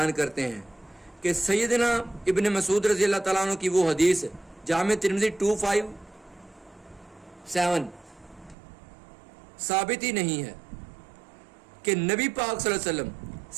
کرتے ہیں کہ سیدنا ابن مسعود رضی اللہ تعالیٰ عنہ کی وہ حدیث جامع ترمذی 257 ثابت ہی نہیں ہے کہ نبی پاک صلی اللہ علیہ وسلم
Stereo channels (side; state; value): left; drops out; at 8.6 s